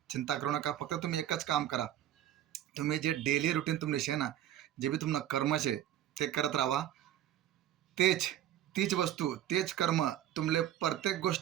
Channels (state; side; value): quieter; left; 11.6 dB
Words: चिंता करू नका. फक्त तुम्ही एकच काम करा. तुम्ही जे डेली रुटीन तुमले शे ना, जे बी तुमनं कर्म शे ते करत राहा. तेच तीच वस्तू तेच कर्म तुमले प्रत्येक